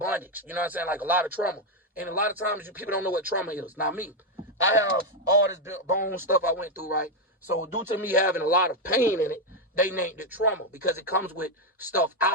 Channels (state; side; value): normal; both; correlation 0.04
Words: You know what I'm saying? Like a lot of trauma. And a lot of times people don't know what trauma is. Now me, I have all this bone stuff I went through, right? So due to me having a lot of pain in it, they named it trauma because it comes with stuff